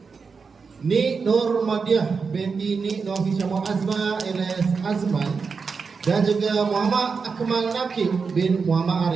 Nik Nur Madiah binti Nik Nur Hishamah Azma alias Azman dan juga Muhammad Akmal Nakib bin Muhammad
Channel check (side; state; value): left; quieter; 5.2 dB